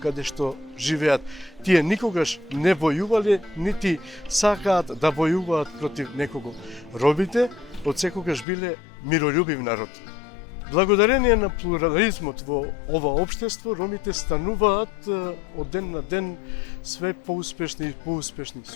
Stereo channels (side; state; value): right; drops out; at 8.5 s